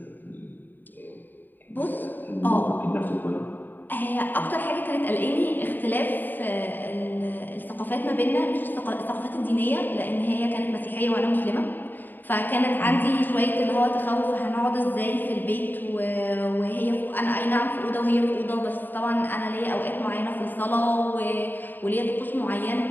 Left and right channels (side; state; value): right; late; 0.090 ms